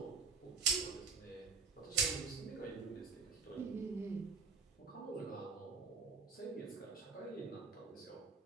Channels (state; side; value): quieter; left; 5.0 dB